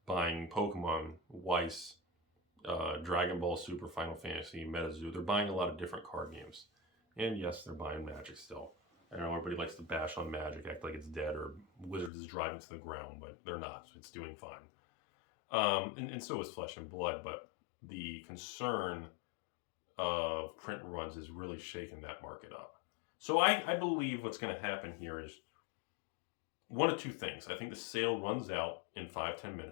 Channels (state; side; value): drops out; right; at 12.1 s